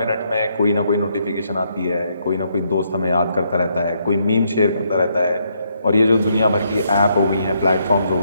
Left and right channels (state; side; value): inverted; both; correlation -0.75